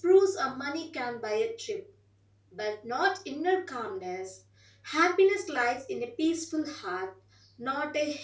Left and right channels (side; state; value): both; identical; correlation 1.00